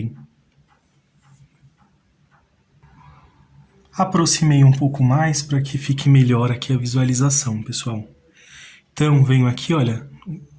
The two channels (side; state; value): both; identical; correlation 1.00